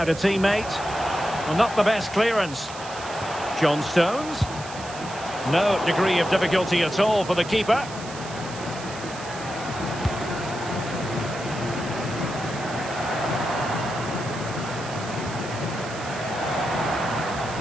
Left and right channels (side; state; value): right; noise; hiss, 14 dB below the sound